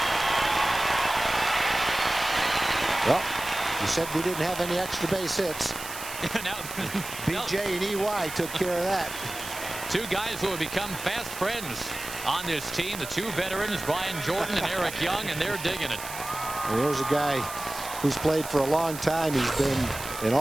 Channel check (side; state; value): right; noise; hiss, 10 dB below the sound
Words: Well, you said we didn't have any extra base hits. BJ and EY took care of that. 2 guys who have become fast friends on this team. The 2 veterans, Brian Jordan and Eric Young, and they're digging it. And here's a guy who's played for a long time. He's been an